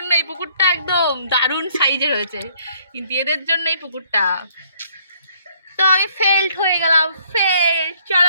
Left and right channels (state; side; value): inverted; both; correlation -0.63